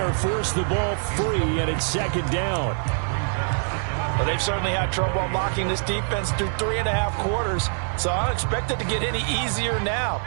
Forced the ball free, and it's 2nd down. Well, they've certainly had trouble unlocking this defense through 3.5 quarters, so I don't expect it to get any easier now.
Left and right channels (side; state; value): left; silent; 62 dB below the other